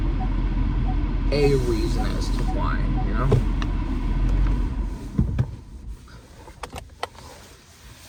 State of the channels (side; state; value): both; identical; correlation 1.00